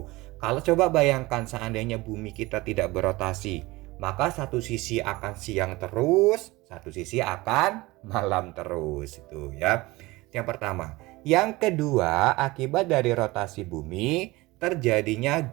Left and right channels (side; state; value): left; quieter; 21.1 dB